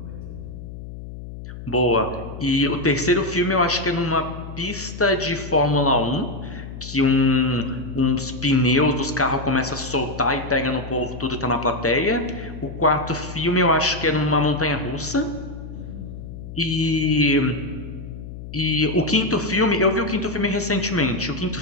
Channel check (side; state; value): left; noise; hum, 11 dB below the sound